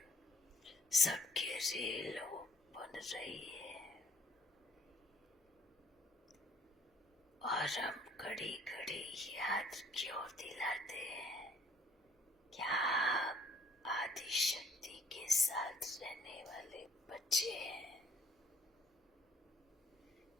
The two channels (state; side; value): normal; both; correlation 0.61